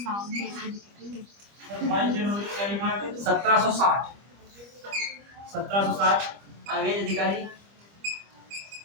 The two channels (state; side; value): late; left; 25 ms